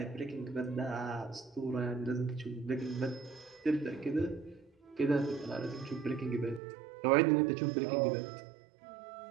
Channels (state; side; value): drops out; left; at 6.6 s